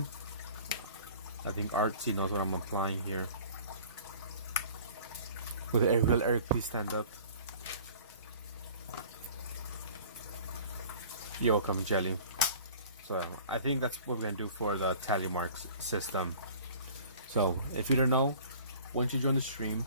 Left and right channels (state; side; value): inverted; both; correlation -0.47